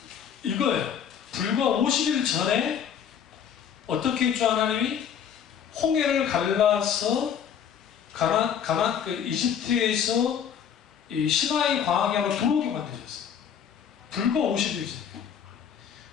이거예요. 불과 50일 전에 어떻게 했죠? 하나님이 홍해를 갈라서 이집트에서 이 시나이 광야로 들어오게 만드셨어요. 불과 50일 전에.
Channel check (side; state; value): right; quieter; 8.3 dB